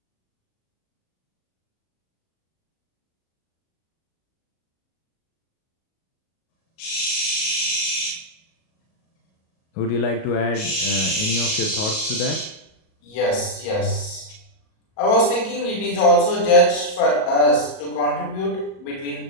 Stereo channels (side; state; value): right; late; 38 ms